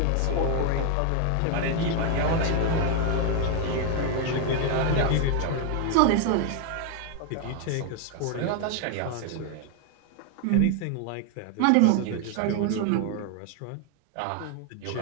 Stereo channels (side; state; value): both; different; correlation 0.01